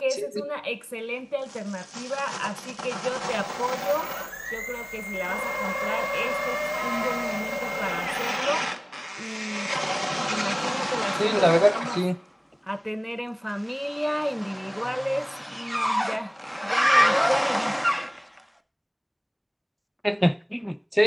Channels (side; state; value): both; identical; correlation 1.00